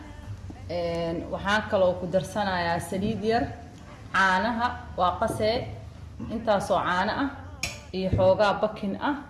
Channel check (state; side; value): identical; both; correlation 1.00